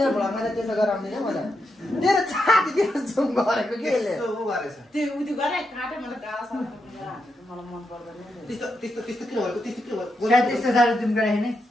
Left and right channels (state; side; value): normal; both; correlation 0.84